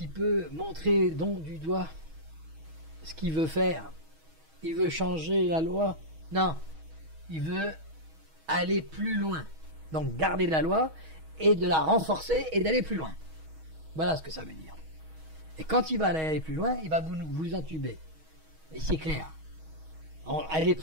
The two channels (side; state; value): left; late; 6.3 ms